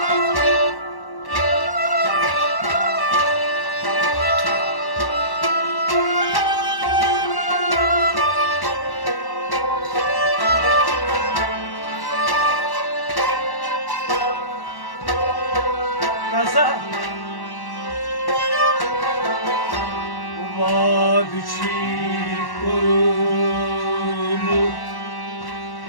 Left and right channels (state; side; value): late; right; 1.1 ms